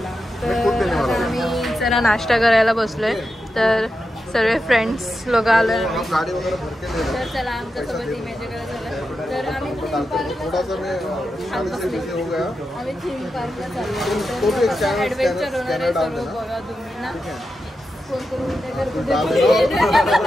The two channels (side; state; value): both; normal; correlation 0.89